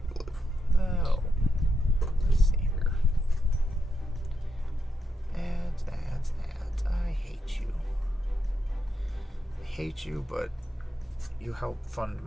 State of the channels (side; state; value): both; normal; correlation 0.83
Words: glue. Oh. Let's see here. Ads. I hate you. I hate you, but you help fund